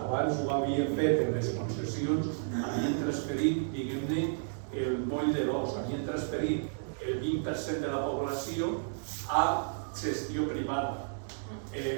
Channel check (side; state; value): left; silent; digital silence